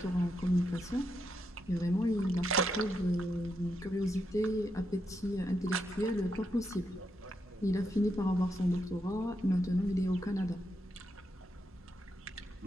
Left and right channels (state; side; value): normal; both; correlation 0.82